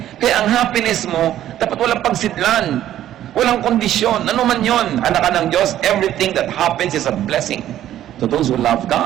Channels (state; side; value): quieter; left; 12.2 dB